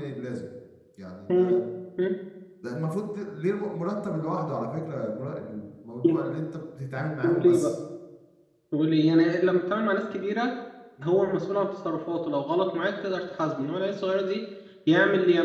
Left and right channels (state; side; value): identical; both; correlation 1.00